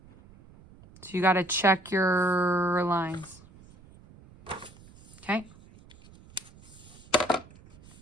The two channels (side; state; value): right; noise; rumble, 23 dB below the sound